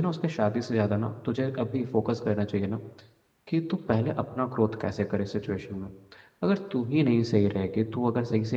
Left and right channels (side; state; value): both; identical; correlation 1.00